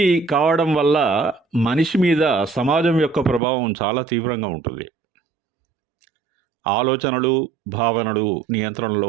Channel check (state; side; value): drops out; left; at 3.4 s